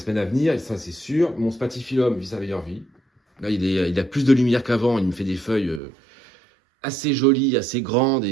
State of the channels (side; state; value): left; drops out; at 5.8 s